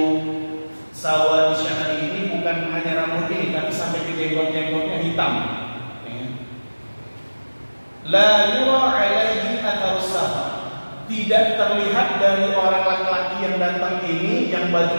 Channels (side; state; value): both; inverted; correlation -1.00